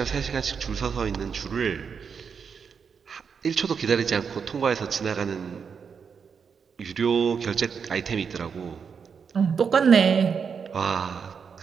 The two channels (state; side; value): quieter; left; 6.3 dB